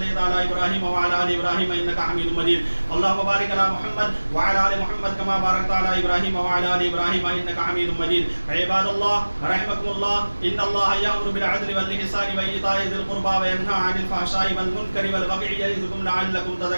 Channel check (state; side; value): inverted; both; correlation -1.00